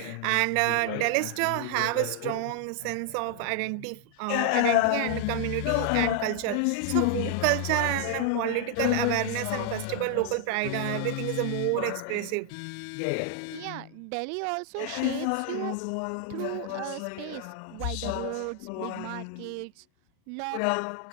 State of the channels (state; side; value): different; both; correlation 0.00